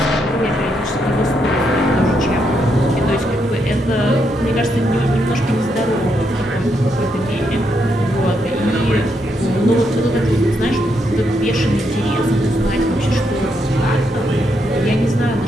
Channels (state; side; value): normal; both; correlation 0.78